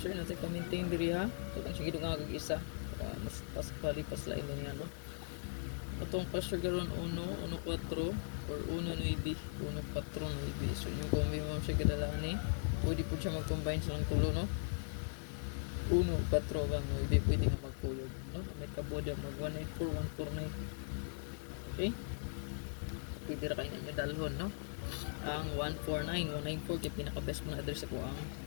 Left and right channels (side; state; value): right; silent; digital silence